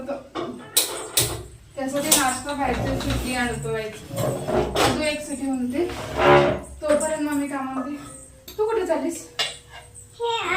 त्यासाठी नाश्ता खायचं, सुट्टी आणतो व्हायची. अजून एक सिटी म्हणते तोपर्यंत मम्मी कामामध्ये. तू कुठे चालीस?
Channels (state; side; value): identical; both; correlation 1.00